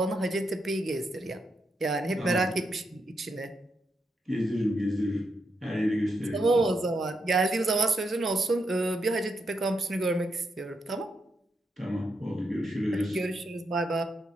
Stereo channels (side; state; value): both; normal; correlation 0.82